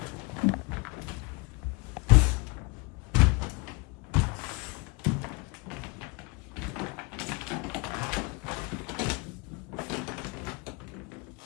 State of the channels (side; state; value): right; quieter; 28.2 dB